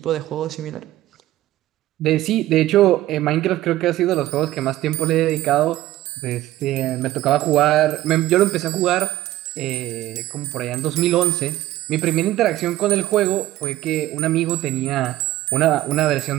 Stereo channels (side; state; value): left; quieter; 15.3 dB